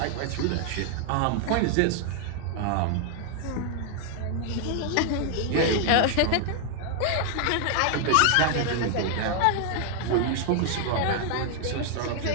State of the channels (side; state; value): both; different; correlation 0.00